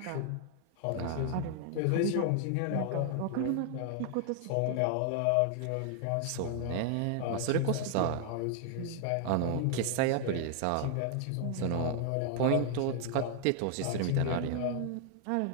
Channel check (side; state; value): both; different; correlation 0.00